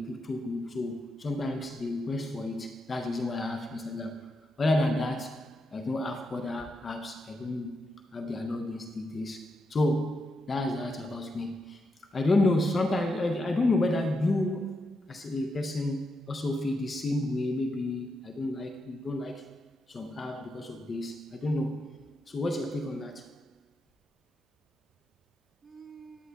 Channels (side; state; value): both; normal; correlation 0.84